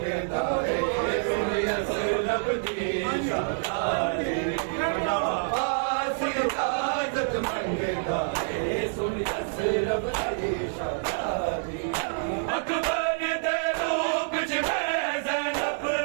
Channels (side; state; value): left; silent; digital silence